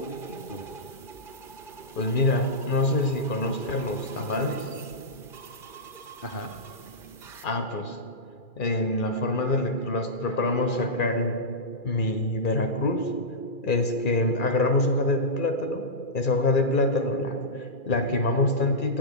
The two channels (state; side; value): late; right; 2.4 ms